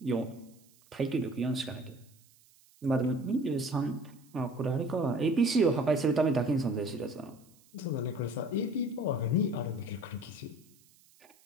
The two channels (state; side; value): noise; right; hiss, 29 dB below the sound